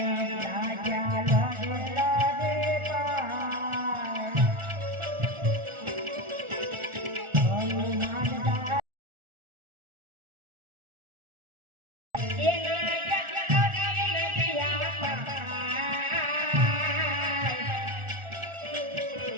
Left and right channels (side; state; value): left; late; 1.4 ms